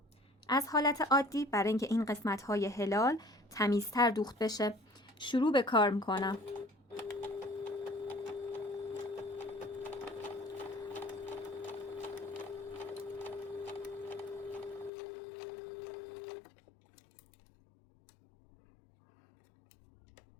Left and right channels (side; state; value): right; drops out; at 14.9 s